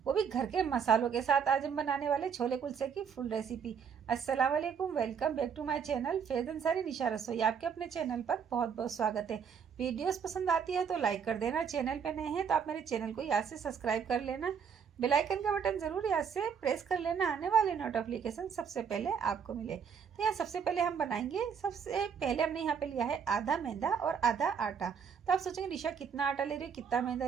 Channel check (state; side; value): quieter; left; 7.0 dB